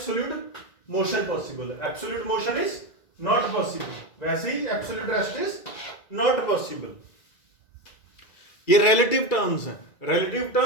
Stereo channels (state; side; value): late; right; 2.3 ms